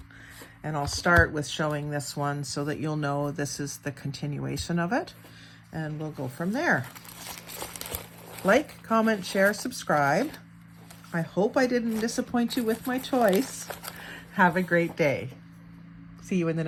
And I'll start with showing this one so that you'll know this is the continuation of it. And we'll go from there. Like, comment, share, subscribe. I hope I didn't disappoint you with my choice. Have a great day. See you in the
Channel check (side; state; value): both; identical; correlation 1.00